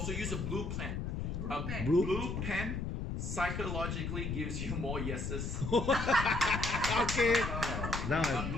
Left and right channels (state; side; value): noise; left; rumble, 3 dB below the sound